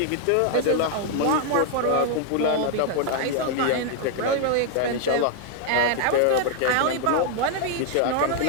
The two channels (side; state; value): both; different; correlation 0.00